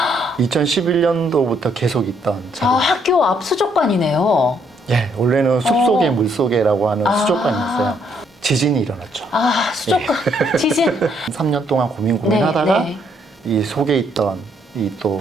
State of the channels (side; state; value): both; normal; correlation 0.70